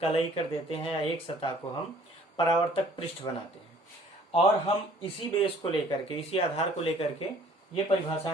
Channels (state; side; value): normal; both; correlation 0.55